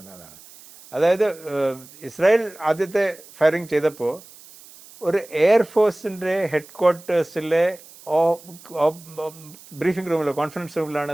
അതായത് ഇസ്രായേൽ ആദ്യത്തെ ഫയറിങ് ചെയ്തപ്പോൾ ഒരു എയർഫോഴ്സിൻ്റെ ഹെഡ് ക്വാർട്ടേഴ്സിലെ ബ്രീഫിംഗ് റൂമിലോ കോൺഫറൻസ് റൂമിലാണ്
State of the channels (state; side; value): noise; right; hiss, 21 dB below the sound